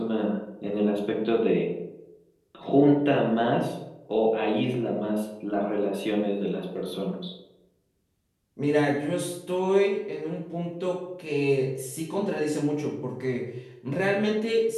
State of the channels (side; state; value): both; identical; correlation 1.00